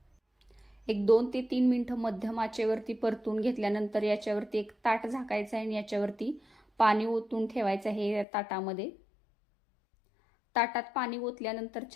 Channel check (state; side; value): drops out; right; at 8.2 s